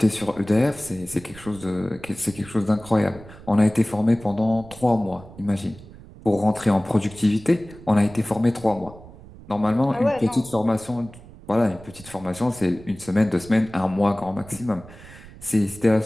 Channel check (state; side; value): noise; right; rumble, 19 dB below the sound